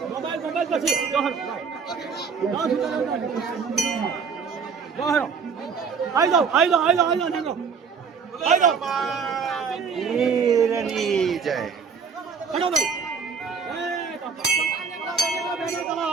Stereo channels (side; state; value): left; quieter; 5.8 dB